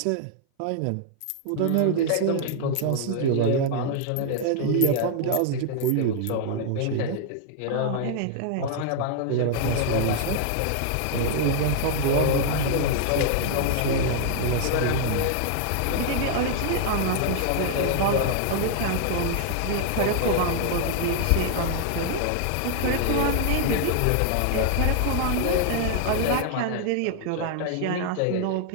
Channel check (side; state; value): both; different; correlation -0.01